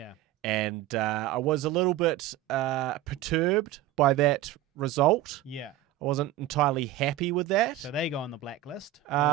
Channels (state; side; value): quieter; left; 13.3 dB